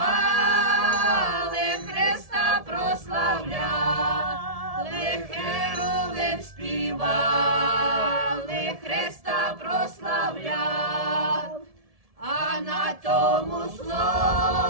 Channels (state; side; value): late; left; 1.7 ms